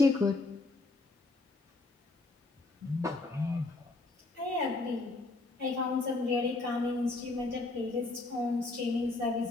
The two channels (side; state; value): right; quieter; 3.3 dB